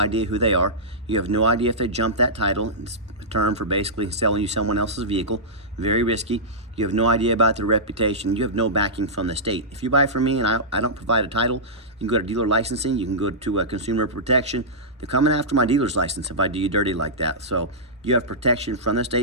who they are. You have no idea if they jumped that title. It's a term for basically selling you someone else's vehicle. Very risky. You have no idea about their reputation. You have no backing from the state. If you buy from me and I don't provide a title, you can go to dealer licensing. You can go to consumer protection. They're coming after my dealer's license if I do you dirty like that. So you have protection from the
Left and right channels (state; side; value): normal; both; correlation -0.14